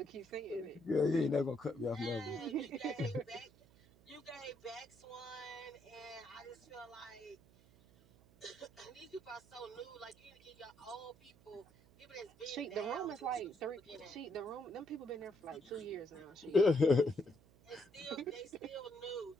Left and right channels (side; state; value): right; noise; hum, 26 dB below the sound